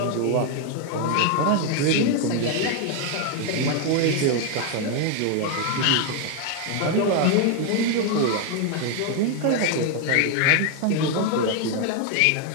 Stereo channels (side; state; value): both; different; correlation 0.01